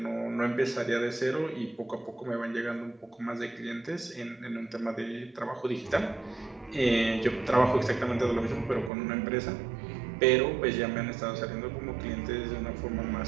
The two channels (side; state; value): left; drops out; at 8.9 s